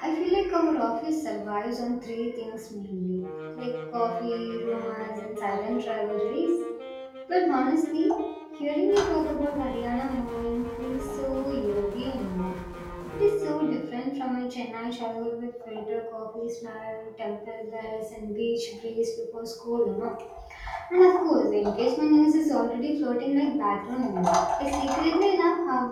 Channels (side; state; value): both; identical; correlation 1.00